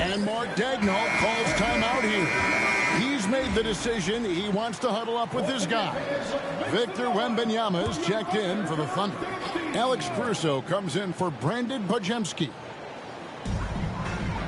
Mark Daigneault calls timeout here. He's made the decision. He wants to huddle up with his guys. Victor Wembanyama is checked in for the Thunder. Alex Caruso comes in for Brandon Podziemski.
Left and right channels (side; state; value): both; identical; correlation 1.00